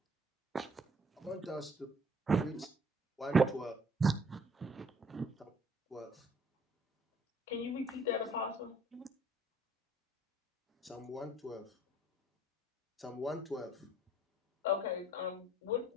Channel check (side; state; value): both; normal; correlation 0.59